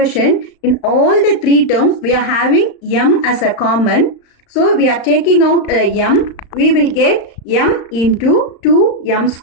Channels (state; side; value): late; right; 35 ms